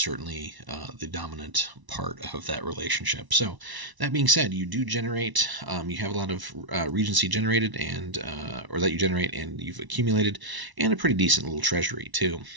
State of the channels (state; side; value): late; left; 1.0 ms